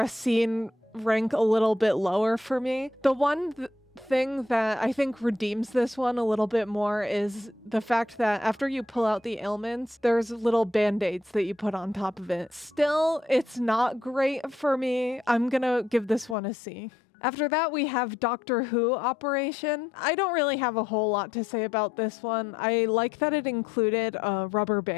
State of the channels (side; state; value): right; drops out; at 16.4 s